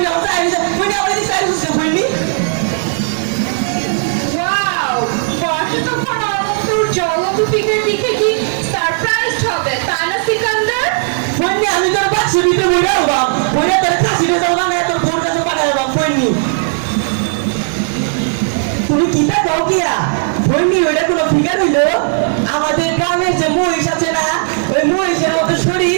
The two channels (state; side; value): silent; left; digital silence